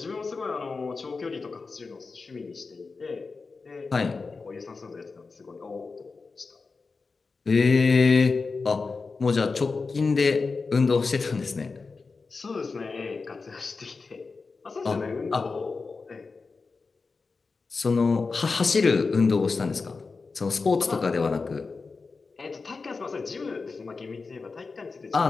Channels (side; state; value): right; quieter; 4.3 dB